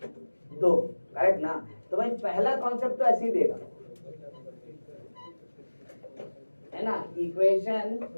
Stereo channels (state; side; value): inverted; both; correlation -1.00